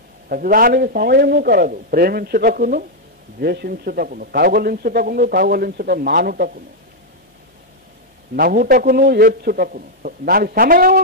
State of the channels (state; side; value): normal; both; correlation -0.01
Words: ప్రతిదానికి సమయము కలదు. ప్రేమించుటకును, ద్వేషించుటకును, కౌగలించుట మానుటకును, నవ్వుటకును, ఏడ్చుటకును. దానికి సమయం